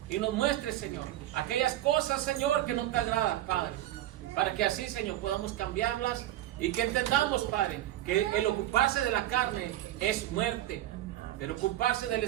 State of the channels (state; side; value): quieter; left; 13.9 dB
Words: y nos muestre, Señor, aquellas cosas, Señor, que no te agradan, Padre. Para que así, Señor, podamos cambiarlas y que entendamos, Padre, que el ocuparse de la carne es muerte, pero ocuparse del